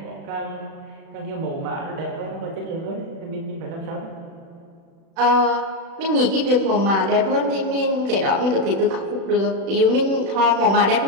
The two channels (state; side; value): late; left; 36 ms